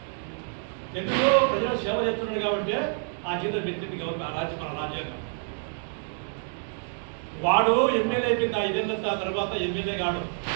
ఎందుకు ప్రజలకు సేవ చేస్తున్నాడు కాబట్టి ఆ జీతం పెంచింది గవర్నమెంట్, మన రాజ్యాంగం. వాడు ఎమ్మెల్యే అయిపోయింది 5 ఏళ్ళ తర్వాత ఎమ్మెల్యే కాడు,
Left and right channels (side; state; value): left; silent; 60 dB below the other